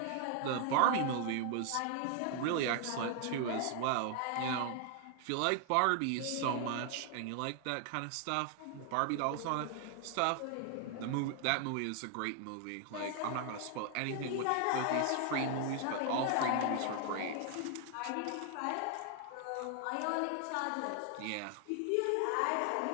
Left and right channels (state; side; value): different; both; correlation 0.00